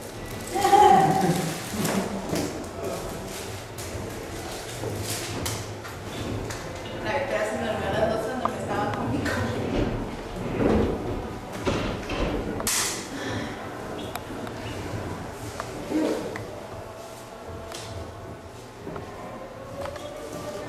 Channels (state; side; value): identical; both; correlation 1.00